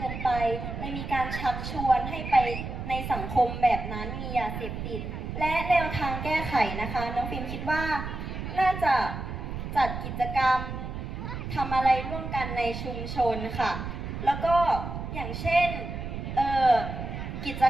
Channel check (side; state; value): right; noise; rumble, 6 dB below the sound